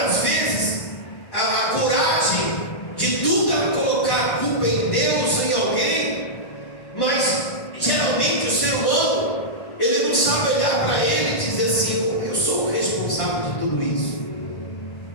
vezes a coragem de tudo ela colocar a culpa em Deus ou em alguém, mas geralmente o ser humano, ele não sabe olhar para ele e dizer assim: eu sou o responsável de tudo isso,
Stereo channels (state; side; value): late; right; 1.1 ms